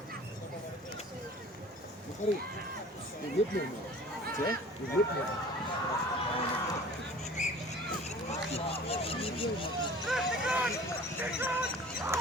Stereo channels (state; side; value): normal; both; correlation 0.45